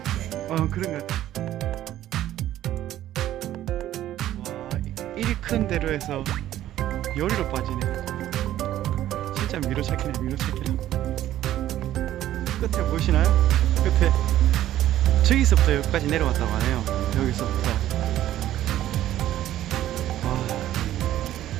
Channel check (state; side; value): quieter; left; 13.0 dB